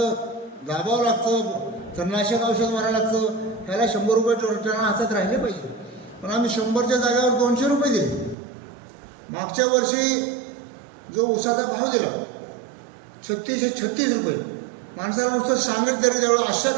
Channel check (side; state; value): left; drops out; at 8.3 s